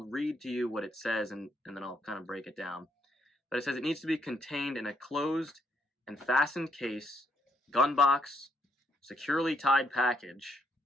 read to you what it says, and then I'll kind of break it down. But it says it needs to be contained in a closed and fastened case, gun box, securely tied package,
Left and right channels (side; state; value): both; normal; correlation 0.73